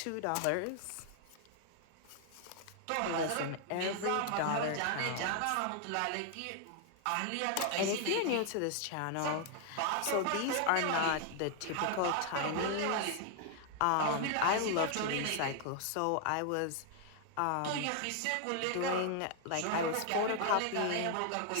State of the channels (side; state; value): both; different; correlation 0.00